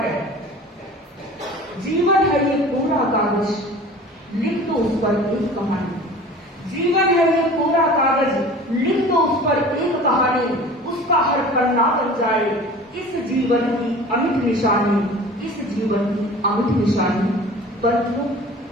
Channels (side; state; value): both; normal; correlation 0.42